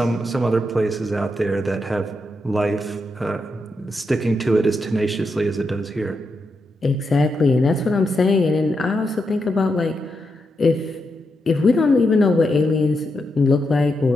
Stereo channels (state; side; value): normal; both; correlation 0.84